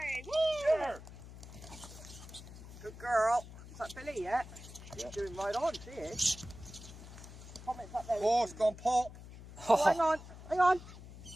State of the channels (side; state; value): left; noise; hum, 15 dB below the sound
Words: Good girl. Is that Billy yet? She's doing right on, she is. Comments up there. Oh, it's gone pop. Oh, hang on, hang on.